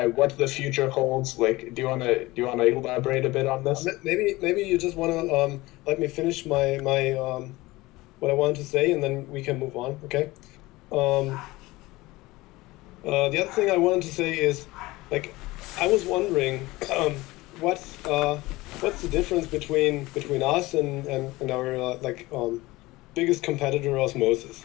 what the future holds? Like, do you want to elaborate a bit on this? Maybe you just want to let me finish my what I wanted to say, and then we can move on. Okay. The other thing I wanted to say is, like, I was wondering what's the difference between us and our biggest competitor, Osmosis.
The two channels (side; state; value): right; quieter; 20.1 dB